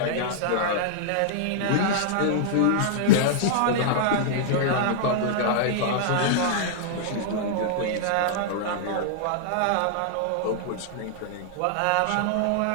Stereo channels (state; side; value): different; both; correlation -0.01